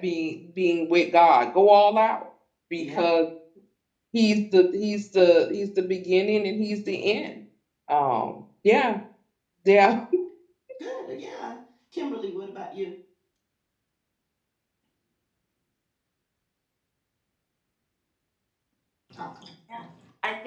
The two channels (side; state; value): both; identical; correlation 1.00